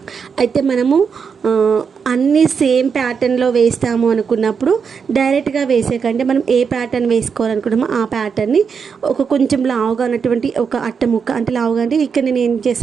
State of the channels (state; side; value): quieter; left; 6.2 dB